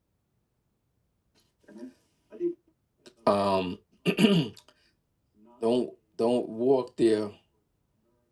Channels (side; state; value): both; identical; correlation 1.00